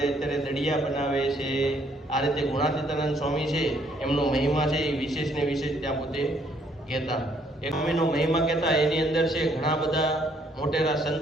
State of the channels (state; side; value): normal; both; correlation 0.67